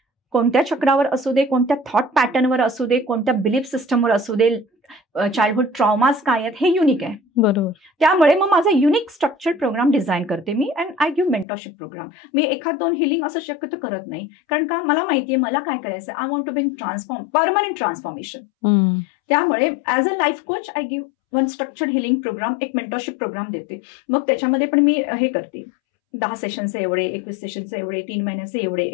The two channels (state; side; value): drops out; right; at 11.5 s